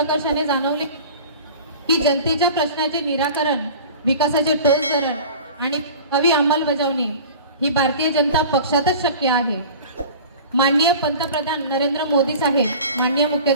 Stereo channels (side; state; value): both; inverted; correlation -0.40